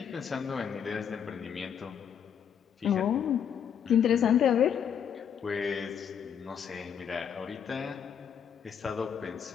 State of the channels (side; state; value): right; quieter; 8.2 dB